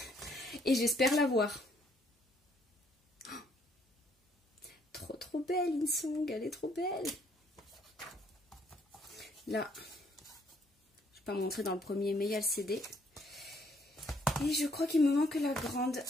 Et j'espère l'avoir. Trop belle, Insong, elle est trop belle. Là, je ne vais pas montrer dans le premier, mais il y a le CD. Et je crois qu'il me manque la grande.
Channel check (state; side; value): normal; both; correlation 0.67